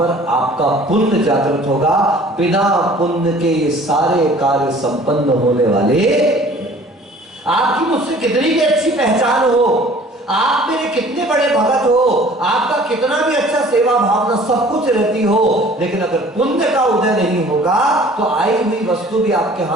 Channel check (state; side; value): normal; both; correlation 0.50